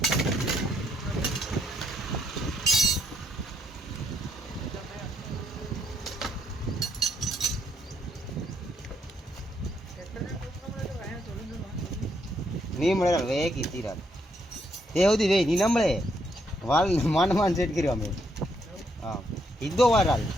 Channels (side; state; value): both; normal; correlation 0.74